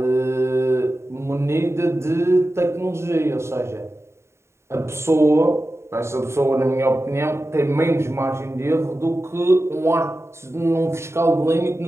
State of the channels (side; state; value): left; late; 0.13 ms